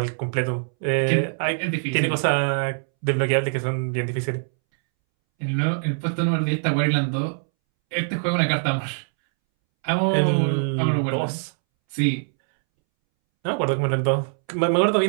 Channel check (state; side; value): silent; left; 63 dB below the other